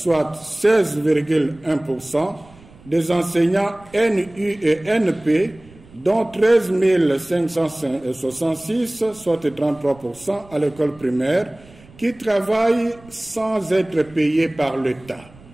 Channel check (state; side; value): noise; right; rumble, 24 dB below the sound